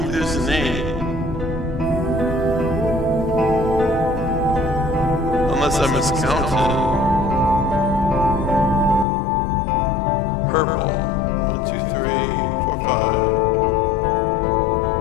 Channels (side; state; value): right; drops out; at 9.1 s